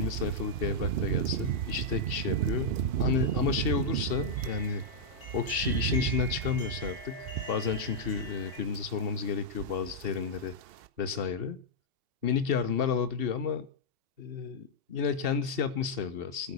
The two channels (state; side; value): late; left; 2.7 ms